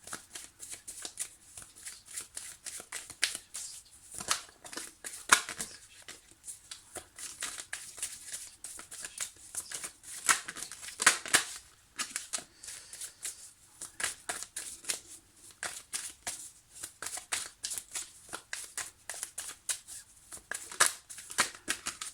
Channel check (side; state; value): both; identical; correlation 1.00